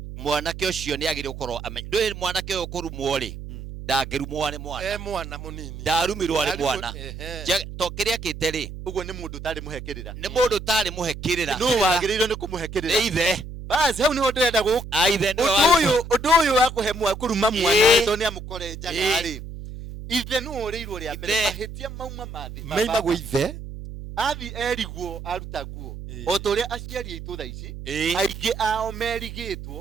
Mwanake ucio ni agire ukorwo ndwe mwanake uyu kurumwo ri ndangirumwo ni mwana mwana munini ndarumirwo ni mwana to kiria kite ri uguo ni mundu tari muhekirira ni mundu tari muhekirira no wagirirwo ni kumuhekirira ni ithe basi hau niho ndirenda guka ithe undu uyu wa kuhemwa kuruma mwana to ni amukore njaga ri ithe no ureirwo ria mbere mahitia mauma mathi maimagwo ithe athi erigwo aruta nguo o toria aciari aitu tha ici aingi ao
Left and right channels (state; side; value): noise; right; hum, 10 dB below the sound